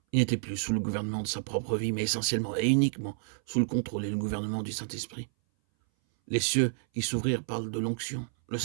Il n'était plus sous le gouvernement de sa propre vie, mais essentiellement et uniquement sous le contrôle et le gouvernement du Saint-Esprit. Les cieux qui s'ouvrirent parlent de l'onction. Le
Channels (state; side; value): silent; left; 58 dB below the other